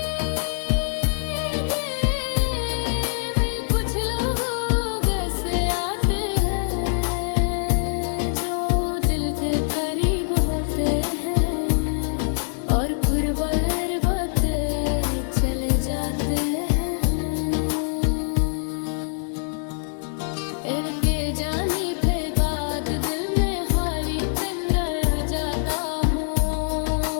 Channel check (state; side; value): silent; right; digital silence